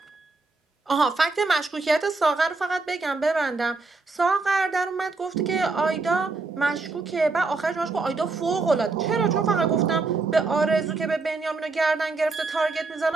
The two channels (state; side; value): quieter; left; 3.8 dB